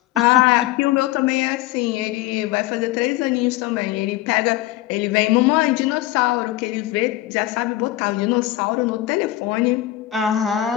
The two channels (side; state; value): right; quieter; 15.6 dB